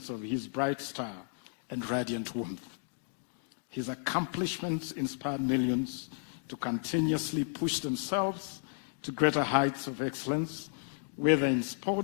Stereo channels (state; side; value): silent; right; digital silence